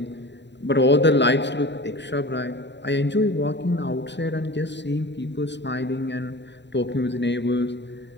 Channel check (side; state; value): right; late; 0.52 ms